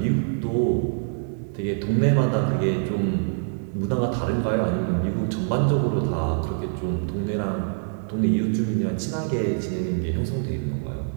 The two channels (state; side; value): silent; left; 62 dB below the other